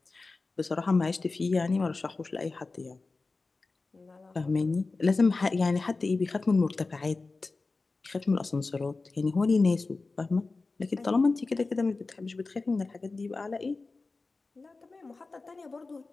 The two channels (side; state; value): right; quieter; 3.7 dB